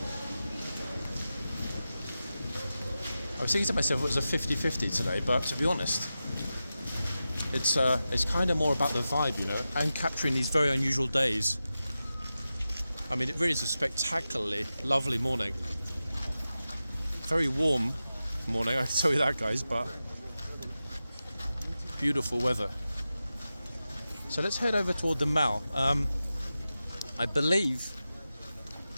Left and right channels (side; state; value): both; inverted; correlation -0.93